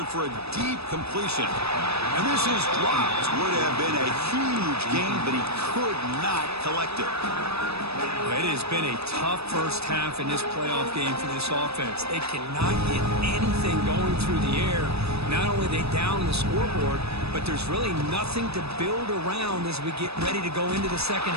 for a deep completion. And this is dropped. Would have been a huge gain, but he could not collect it. It has been a tough first half in this playoff game for this offense. They cannot get anything going through the air. Not only are they down the scoreboard, but there's really nothing to build around as we get ready to go into the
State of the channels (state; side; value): late; left; 0.78 ms